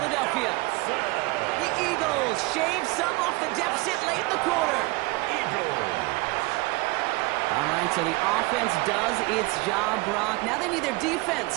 The Eagles shave some off the deficit late in the quarter. Eagles. All right, so the offense does its job, Brock. Now they need their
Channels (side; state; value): left; quieter; 23.5 dB